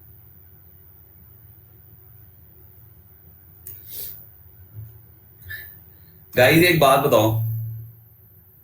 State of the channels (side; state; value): both; identical; correlation 1.00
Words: गाइस एक बात बताओ,